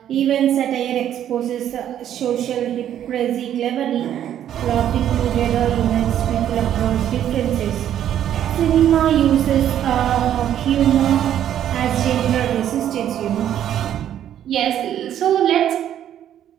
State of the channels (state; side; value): quieter; left; 10.7 dB